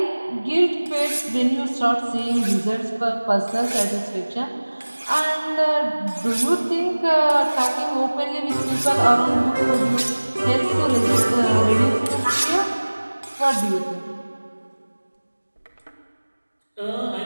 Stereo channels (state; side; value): inverted; both; correlation -1.00